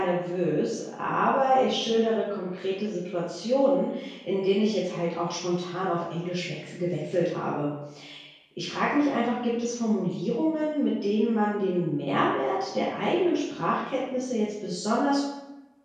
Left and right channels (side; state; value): both; identical; correlation 1.00